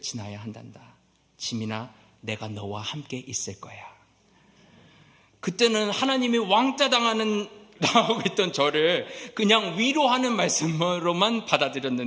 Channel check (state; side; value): identical; both; correlation 1.00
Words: 지나야 한단다. 지민아, 내가 너와 함께 있을 거야. 그때는 하나님이 왕따 당하고 있던 저를 그냥 위로하는 말씀으로만